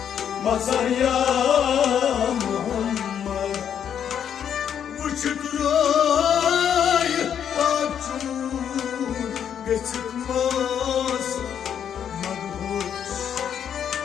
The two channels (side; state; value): right; quieter; 8.7 dB